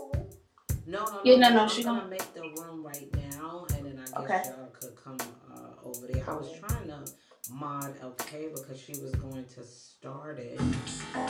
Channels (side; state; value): both; identical; correlation 1.00